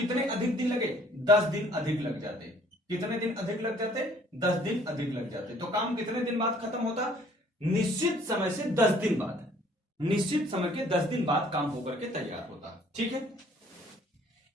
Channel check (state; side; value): normal; both; correlation 0.58